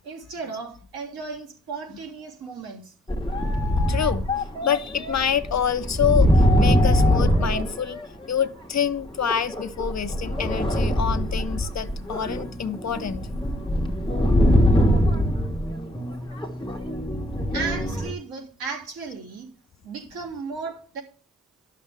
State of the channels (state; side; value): normal; both; correlation 0.61